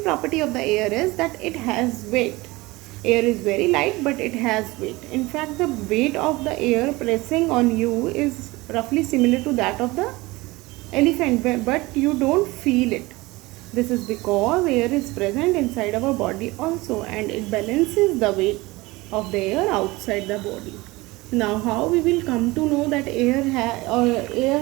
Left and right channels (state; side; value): quieter; left; 21.5 dB